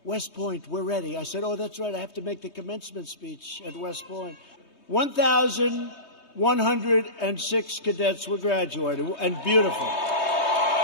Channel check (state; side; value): late; right; 3.2 ms